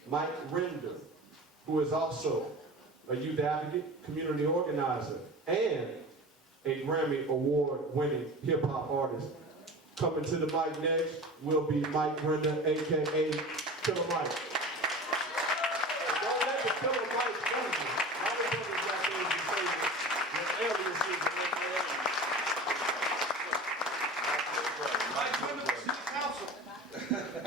Mike Render, who is also a youth advocate, community organizer, and a Grammy Award winning hip-hop artist. Coming to the mic next will be Mike Render, aka Killer Mike. Don't let the Killer Mike fool you. A lot of brothers out there who say that aliases Mike Render, City Council.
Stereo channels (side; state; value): both; normal; correlation 0.34